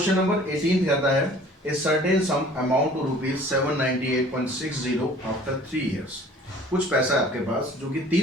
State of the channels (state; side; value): normal; both; correlation 0.50